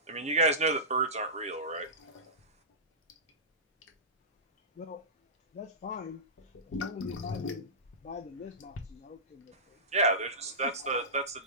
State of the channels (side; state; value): both; normal; correlation -0.20